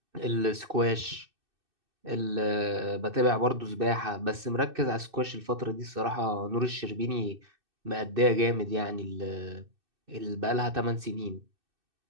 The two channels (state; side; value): late; left; 2.6 ms